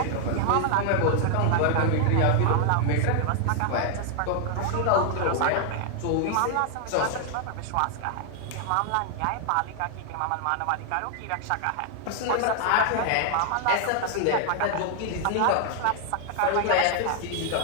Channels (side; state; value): both; different; correlation 0.00